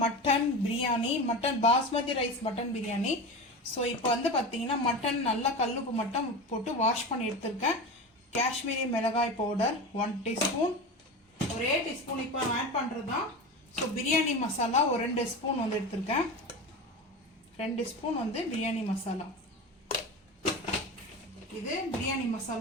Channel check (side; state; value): both; normal; correlation 0.27